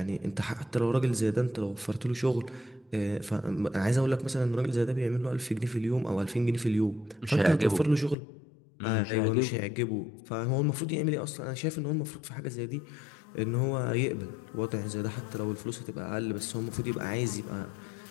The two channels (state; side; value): drops out; right; at 8.2 s